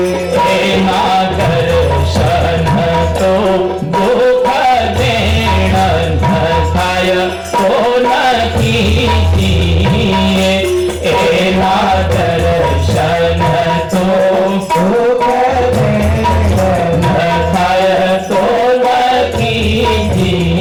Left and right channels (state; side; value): identical; both; correlation 1.00